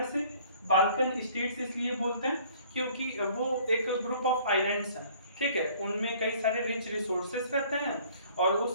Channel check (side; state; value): both; inverted; correlation -0.55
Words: बाल्कन स्टेट्स इसलिए बोलते हैं क्योंकि वो एक ग्रुप ऑफ आइलैंड्स हैं, ठीक है, उनमें कई सारे रिच रिसोर्सेस रहते हैं और